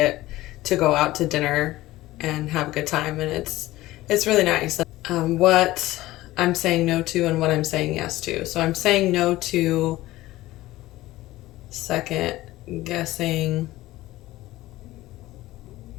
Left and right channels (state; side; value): quieter; right; 17.1 dB